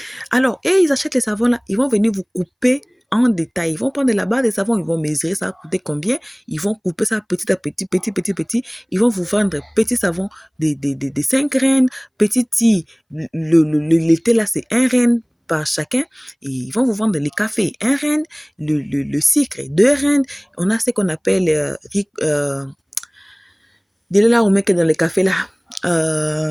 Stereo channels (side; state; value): both; identical; correlation 1.00